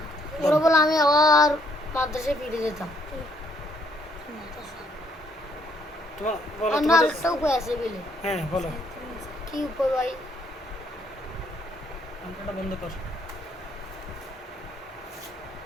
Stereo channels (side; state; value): both; normal; correlation 0.68